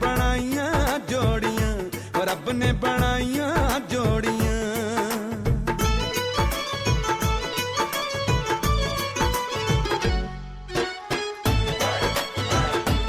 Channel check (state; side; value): identical; both; correlation 1.00